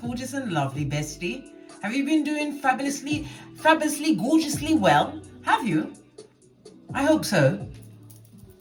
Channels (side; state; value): both; identical; correlation 1.00